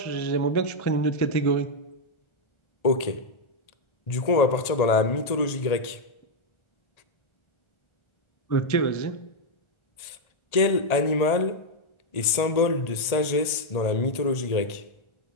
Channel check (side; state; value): right; late; 1.8 ms